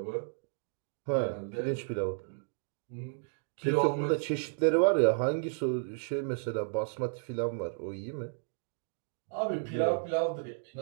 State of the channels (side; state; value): left; silent; digital silence